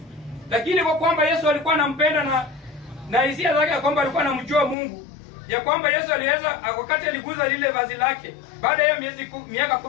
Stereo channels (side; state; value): right; drops out; at 4.8 s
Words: lakini kwa kwamba Yesu alikuwa anampenda na hisia zake ya kwamba alikuwa anamjua Mungu, ya kwamba Yesu aliweza, wakati aliguza lile vazi lake, baada ya miaka